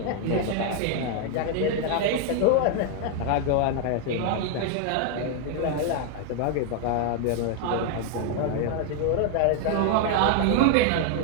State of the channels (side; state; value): both; different; correlation 0.00